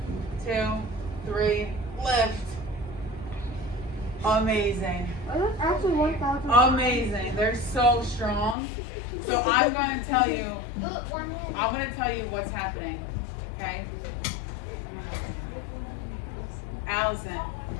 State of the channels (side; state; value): right; drops out; at 8.6 s